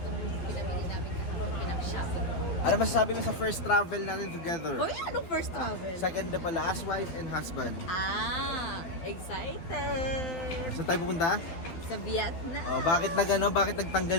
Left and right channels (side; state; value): right; late; 12 ms